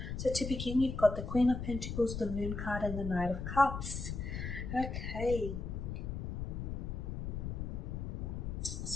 So to begin, you've got the Queen of Pentacles, the Moon card and the Knight of Cups. Okay.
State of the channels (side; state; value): left; noise; rumble, 4 dB below the sound